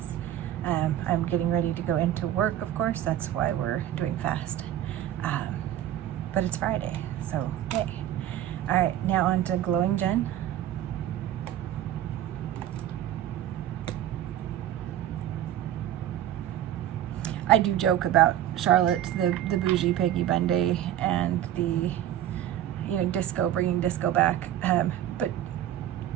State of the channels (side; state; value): left; quieter; 11.9 dB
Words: I'm getting ready to go into work, of course. That's why we're doing fast. But it's Friday, so yay. All right, now on to Glowing Jen. I do joke about Charlotte, the bougie Peggy Bundy, and the, you know, disco, bringing disco back. But